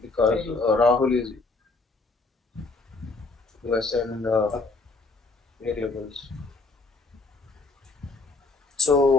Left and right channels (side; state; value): right; quieter; 3.6 dB